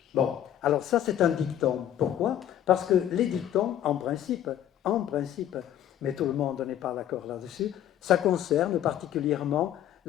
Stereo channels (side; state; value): right; quieter; 11.1 dB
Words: Bon, alors ça c'est un dicton. Pourquoi? Parce que les dictons, en principe, mais tout le monde n'est pas d'accord là-dessus, ça concerne particulièrement